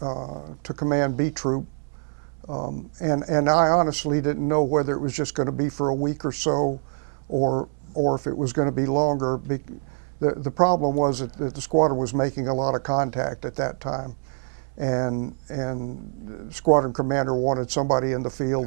command B Troop. And I honestly didn't know whether it was just going to be for a week or so, or if it was going to be longer. The problem was that the squadron was making a lot of contact at that time. And the squadron commander wanted somebody in the field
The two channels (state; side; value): silent; left; 62 dB below the other